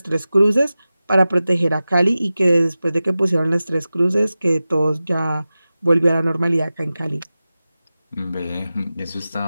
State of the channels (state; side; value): inverted; both; correlation -0.95